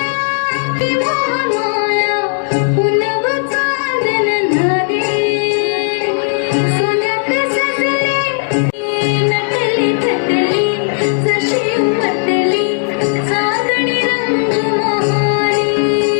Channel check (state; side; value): silent; right; digital silence